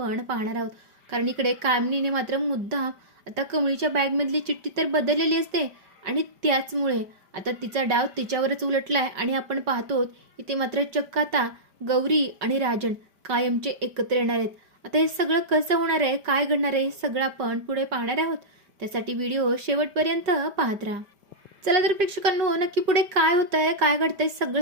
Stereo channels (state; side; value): late; left; 5.0 ms